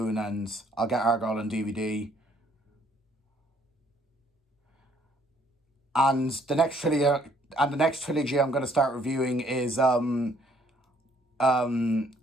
and I'll get Argyle on DVD. And the next trilogy I'm going to start reviewing is the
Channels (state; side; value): normal; both; correlation 0.64